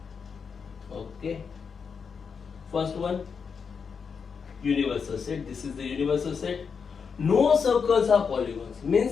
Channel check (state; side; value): quieter; right; 6.0 dB